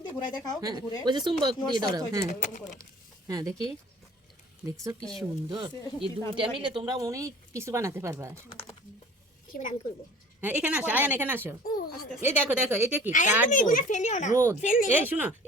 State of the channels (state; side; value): normal; both; correlation 0.46